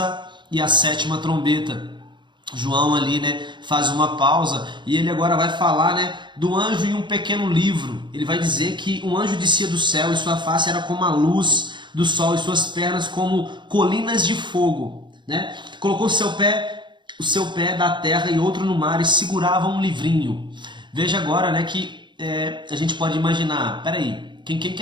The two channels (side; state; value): left; late; 0.23 ms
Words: e a sétima trombeta. João ali, né, faz uma pausa e ele agora vai falar, né, do anjo em um pequeno livro. Ele vai dizer que um anjo descia do céu e sua face era como a luz do sol e suas pernas como colinas de fogo, né? Colocou o seu pé da terra e outro no mar e segurava um livrinho. Veja agora, né, que a gente pode imaginar, peraí, quem